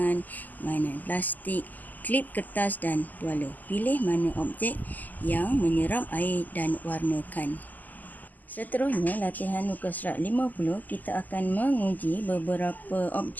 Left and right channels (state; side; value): late; right; 0.083 ms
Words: mainan plastik, klip kertas dan tuala. Pilih mana objek yang menyeram air dan warnakan. Seterusnya, latihan muka surat 50, kita akan menguji beberapa